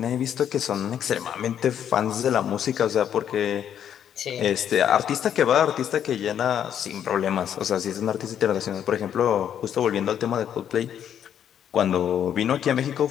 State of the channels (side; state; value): right; quieter; 9.4 dB